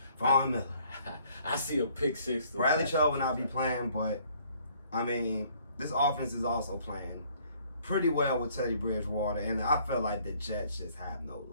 Von Miller. I see a pick 6. Bradley Chubb will not be playing, but I mean, this offense is also playing pretty well with Teddy Bridgewater, and I feel like the Jets just have no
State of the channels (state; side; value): inverted; both; correlation -0.61